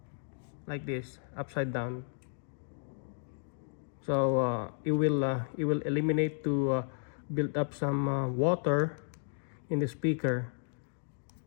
like this, upside down. So it will eliminate to build up some water in the speaker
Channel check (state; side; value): silent; right; digital silence